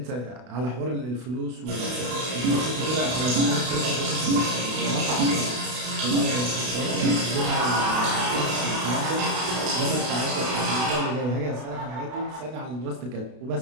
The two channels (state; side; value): late; left; 32 ms